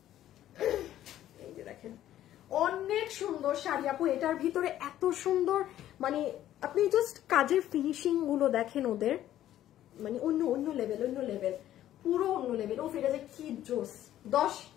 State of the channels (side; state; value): right; quieter; 12.5 dB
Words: এই যে দেখেন অনেক সুন্দর শাড়ি আপু, এটার ভিতরে এত সুন্দর, মানে আপনি জাস্ট কাজের ফিনিশিং গুলো দেখেন ওদের, মানে অন্য লেভেল, পুরো অন্য লেভেল। ও ফিরে যায় কি জোস। 10,